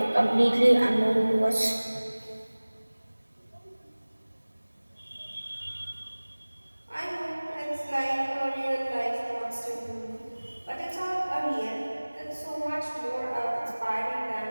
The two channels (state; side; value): inverted; both; correlation -1.00